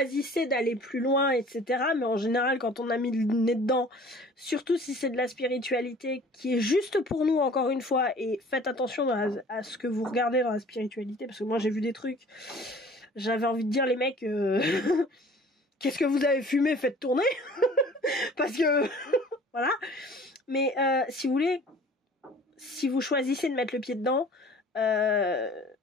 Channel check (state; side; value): normal; both; correlation 0.48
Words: d'aller plus loin, etc., mais en général, quand on a mis le nez dedans, surtout si c'est de la spiritualité qui est juste pour nous, encore une fois, et faites attention à ce que vous regardez dans la spiritualité, parce que moi, j'ai vu des trucs, j'avais envie de dire, les mecs, qu'est-ce que vous avez fumé, faites tourner, parce que, voilà. Mais si vous voulez, si vous choisissez de mettre le pied dedans,